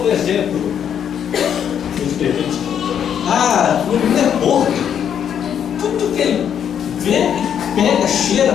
exemplo. Ah, o menino é porco. Tudo que ele vê, pega, cheira,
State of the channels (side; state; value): right; quieter; 8.7 dB